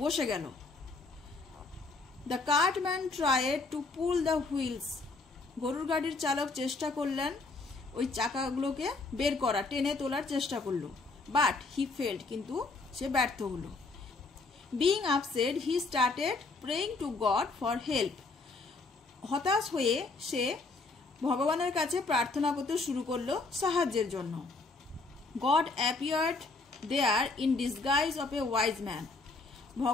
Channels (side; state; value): right; quieter; 3.7 dB